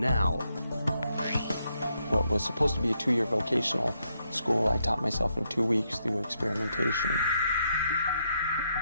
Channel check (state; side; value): inverted; both; correlation -0.79